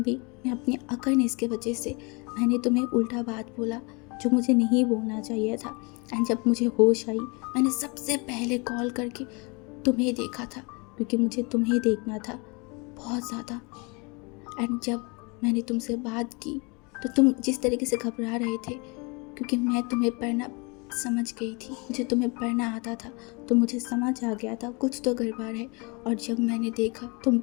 भी मैं अपनी अकड़नेस की वजह से मैंने तुम्हें उल्टा बात बोला जो मुझे नहीं बोलना चाहिए था। एंड जब मुझे होश आई मैंने सबसे पहले कॉल करके तुम्हें देखा था, क्योंकि मुझे तुम्हें देखना था बहुत ज़्यादा। एंड जब मैंने तुमसे बात की तो तुम जिस तरीके से घबरा रहे थे, क्योंकि मैं तुम्हें पढ़ना समझ गई थी, मुझे तुम्हें पढ़ना आता था, तो मुझे समझ आ गया था कुछ तो गड़बड़ है। और जब मैंने देखा तुम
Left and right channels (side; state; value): right; quieter; 29.8 dB